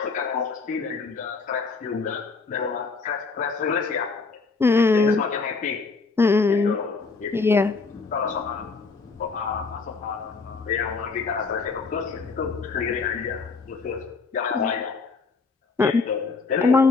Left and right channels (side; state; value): right; quieter; 4.4 dB